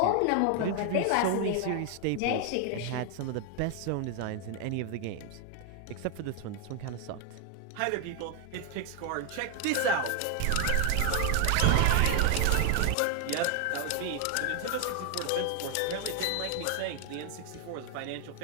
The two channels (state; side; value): different; both; correlation 0.00